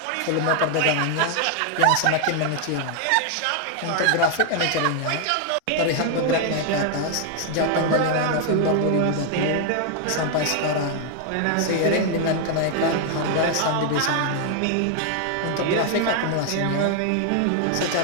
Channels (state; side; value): different; both; correlation 0.00